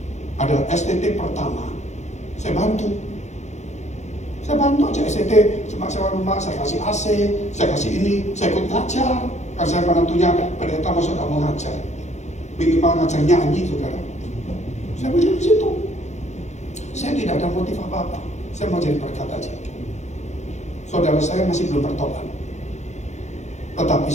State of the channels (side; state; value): right; late; 0.33 ms